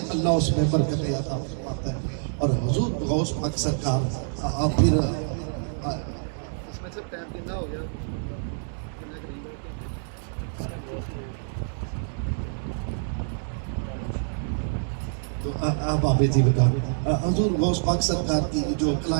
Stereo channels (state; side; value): silent; left; digital silence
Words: اللہ اس میں برکت عطا فرماتا ہے۔ اور حضور غوث پاک سرکار پھر تو آپ آبے جی بتا حضور غوث پاک سرکار کی جو